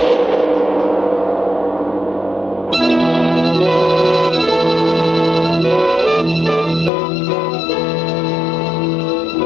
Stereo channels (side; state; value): right; drops out; at 6.9 s